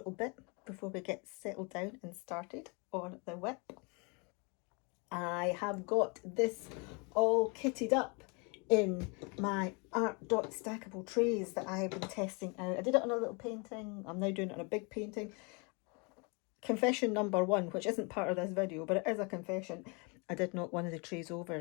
bit before we get settled down and started on the whip. I have got this all kitted up in my Art Dot stackable trays that I have been testing out. I did it on a little painting. I'm now doing it on a big painting. Confession number 1, which isn't part of this video, but it is a confession. I did knock one of the trays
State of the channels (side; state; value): right; quieter; 31.9 dB